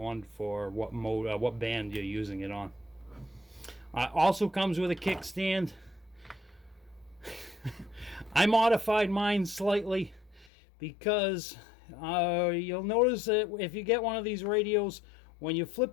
for what mode, what band you're using it on. Also comes with a kickstand. I modified mine slightly because you'll notice that if you get one of these radios, when you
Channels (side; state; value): right; drops out; at 10.5 s